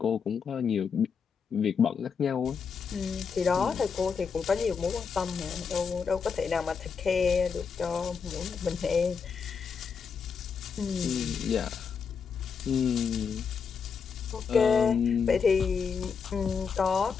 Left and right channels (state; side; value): quieter; right; 6.0 dB